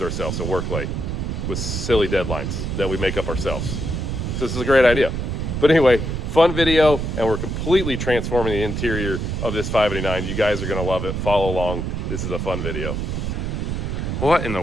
ourselves and work late with silly deadlines that we make up ourselves. So this is a great idea. But anyway, fun video, and we're completely transforming the interior of this 589. You guys are gonna love it. Follow along. This is a fun video. What in the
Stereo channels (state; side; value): noise; right; rumble, 2 dB below the sound